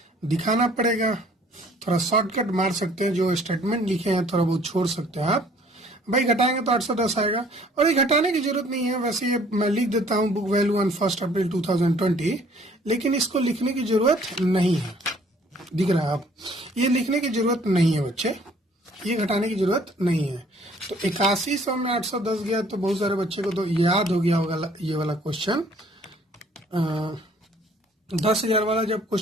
दिखाना पड़ेगा। थोड़ा शॉर्टकट मार सकते हैं, जो स्टेटमेंट लिखे हैं थोड़ा बहुत छोड़ सकते हैं आप। भाई घटाएंगे तो 810 आएगा, और ये घटाने की जरूरत नहीं है। वैसे ये मैं लिख देता हूँ बुक वैल्यू ऑन 1 अप्रैल 2020, लेकिन इसको लिखने की जरूरत नहीं है। दिख रहा है आप, ये लिखने की जरूरत नहीं है बच्चे, ये घटाने की जरूरत नहीं है। तो 8100 में 810 गया, तो बहुत सारे बच्चे को तो याद हो गया होगा ये वाला क्वेश्चन। 10,000 वाला जब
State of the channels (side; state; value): both; normal; correlation 0.58